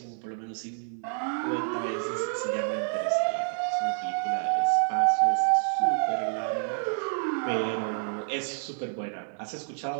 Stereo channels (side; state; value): left; silent; 58 dB below the other